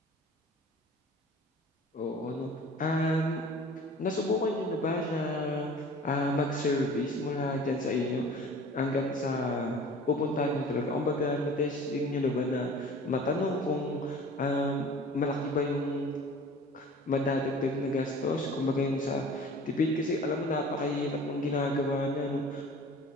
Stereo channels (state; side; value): normal; both; correlation 0.44